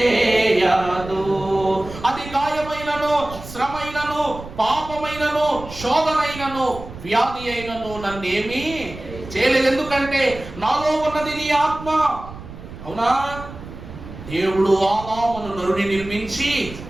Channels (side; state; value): right; noise; rumble, 14 dB below the sound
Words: అది గాయమైనను, శ్రమైనను, పాపమైనను, శోధనైనను, వ్యాధి అయినను నన్నేమి చేయలేదు. ఎందుకంటే నాలో ఉన్నది నీ ఆత్మ. అవునా? దేవుడు ఆదామును నరుని నిర్మించి